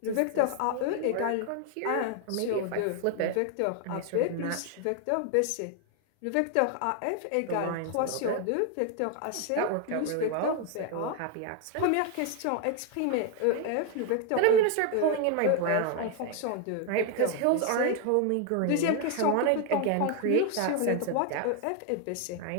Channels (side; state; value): both; different; correlation 0.00